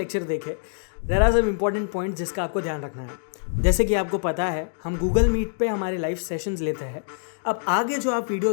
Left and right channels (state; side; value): silent; right; digital silence